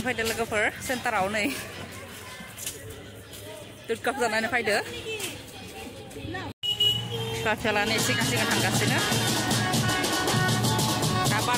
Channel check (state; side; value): identical; both; correlation 1.00